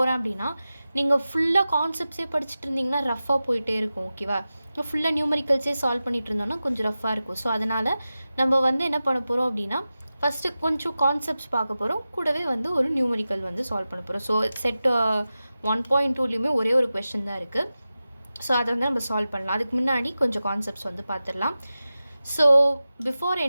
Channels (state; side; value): inverted; both; correlation -0.94